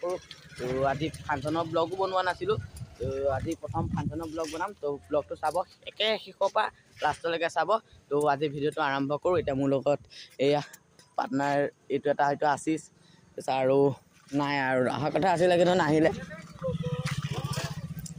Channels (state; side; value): identical; both; correlation 1.00